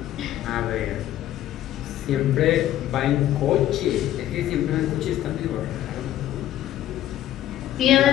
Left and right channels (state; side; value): quieter; right; 12.7 dB